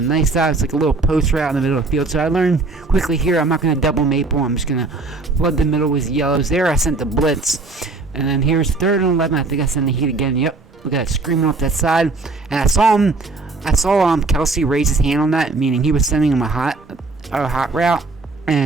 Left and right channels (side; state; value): left; quieter; 3.6 dB